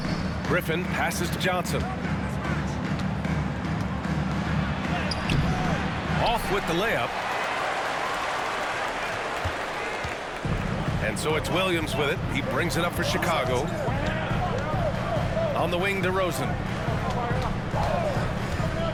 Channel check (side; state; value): both; identical; correlation 1.00